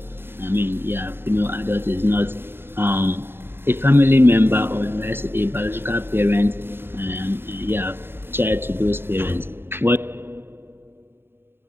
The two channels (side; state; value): left; late; 0.11 ms